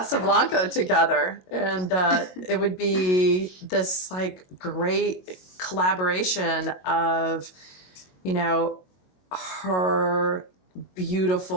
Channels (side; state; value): right; late; 22 ms